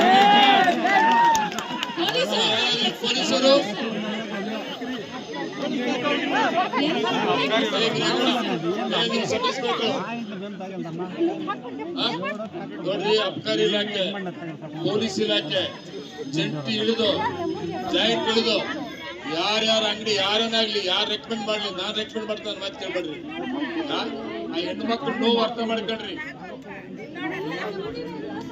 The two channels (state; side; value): identical; both; correlation 1.00